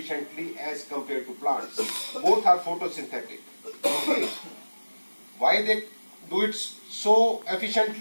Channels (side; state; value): both; inverted; correlation -1.00